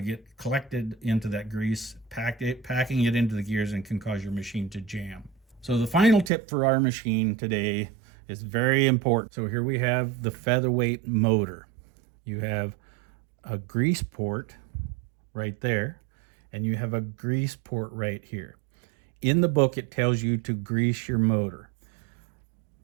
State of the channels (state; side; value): drops out; left; at 6.3 s